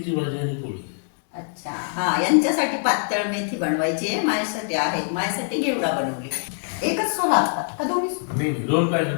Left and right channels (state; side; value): silent; right; 63 dB below the other